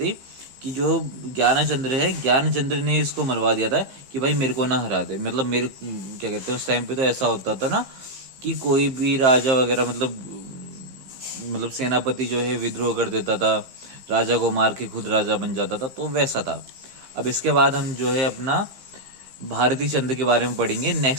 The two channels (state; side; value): late; left; 15 ms